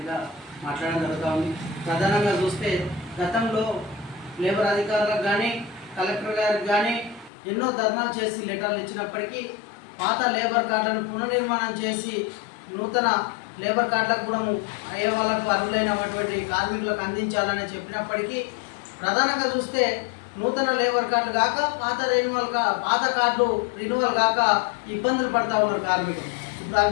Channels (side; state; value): right; drops out; at 7.3 s